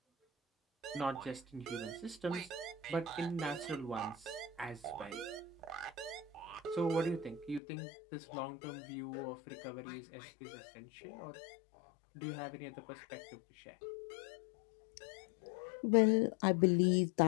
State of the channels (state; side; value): drops out; right; at 7.6 s